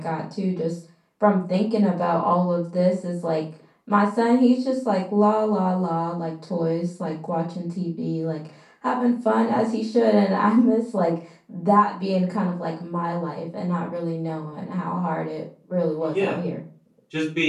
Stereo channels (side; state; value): both; identical; correlation 1.00